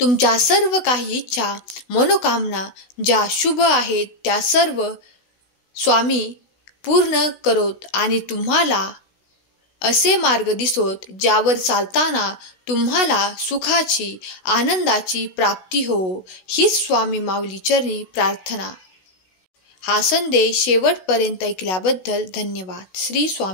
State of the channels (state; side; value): late; right; 16 ms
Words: सर्व काही इच्छा, मनोकामना ज्या शुभ आहेत त्या सर्व स्वामी पूर्ण करोत आणि तुम्हाला असे मार्ग दिसोत ज्यावर चालताना तुम्हाला सुखाची, आनंदाची प्राप्ती हो. हीच स्वामी माऊली चरणी प्रार्थना. हा संदेश शेवटपर्यंत ऐकल्याबद्दल धन्यवाद. श्री